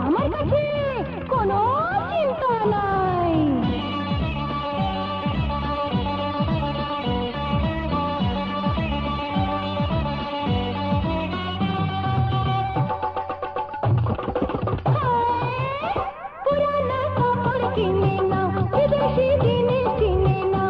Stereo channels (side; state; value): both; identical; correlation 1.00